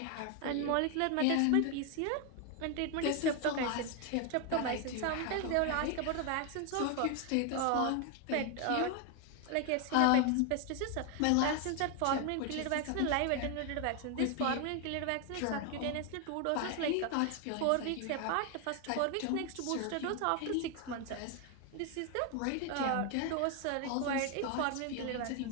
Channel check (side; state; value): both; different; correlation 0.01